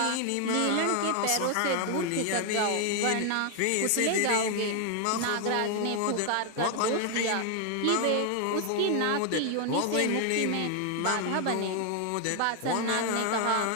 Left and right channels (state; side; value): different; both; correlation 0.01